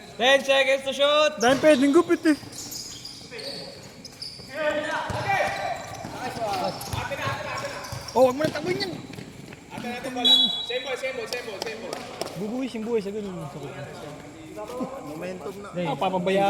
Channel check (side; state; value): both; identical; correlation 1.00